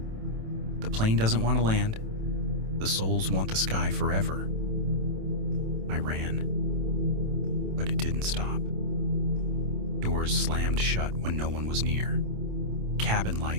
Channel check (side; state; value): left; late; 27 ms